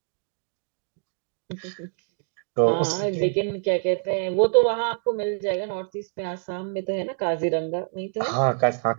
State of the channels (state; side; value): silent; left; digital silence